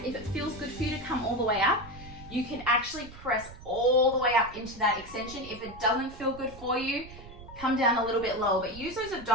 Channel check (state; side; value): noise; right; rumble, 17 dB below the sound